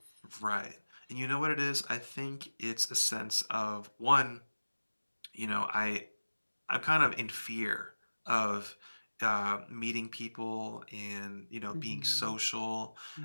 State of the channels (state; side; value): inverted; both; correlation -1.00